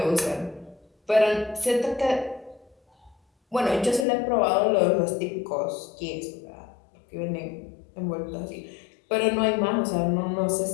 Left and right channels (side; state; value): right; drops out; at 4.0 s